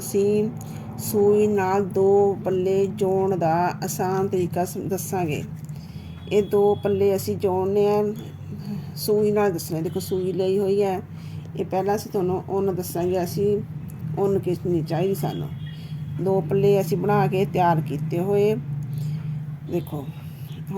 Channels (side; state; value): both; identical; correlation 1.00